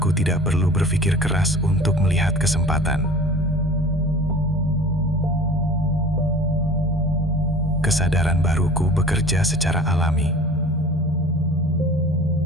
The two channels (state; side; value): normal; both; correlation 0.43